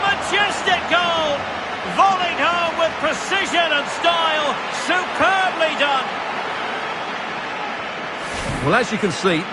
majestic goal! Volleyed home with precision and style. Superbly done. Well, as you can see,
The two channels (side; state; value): both; identical; correlation 1.00